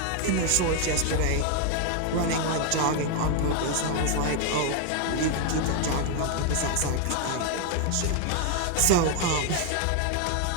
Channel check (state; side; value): different; both; correlation 0.00